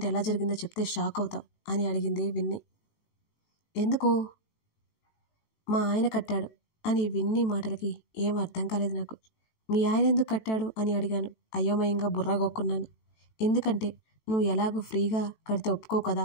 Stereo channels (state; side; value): late; right; 18 ms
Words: ఎలా జరిగిందో చెప్తే షాక్ అవుతావు అని అడిగింది విన్నీ. ఎందుకు? మా ఆయన కట్టాడు అని విన్నీ మాటలకి ఏం అర్థం కాలేదు నాకు. మీ ఆయన ఎందుకు కట్టాడు అని అడిగాను. అయోమయంగా బుర్రగొక్కున్నాను. ఎందుకంటే నువ్వు ఎలాగో ఫ్రీగా కడితే ఒప్పుకో కదా,